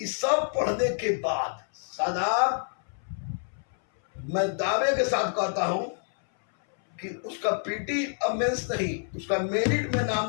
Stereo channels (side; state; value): right; silent; 60 dB below the other